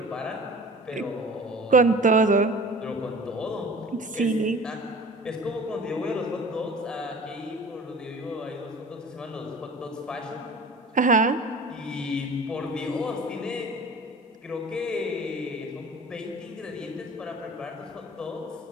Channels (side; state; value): both; normal; correlation 0.42